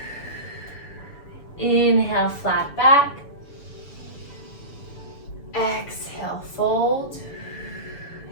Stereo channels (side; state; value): right; late; 7.1 ms